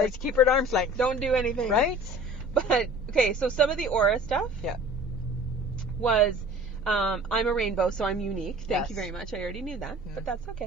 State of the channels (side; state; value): both; normal; correlation 0.45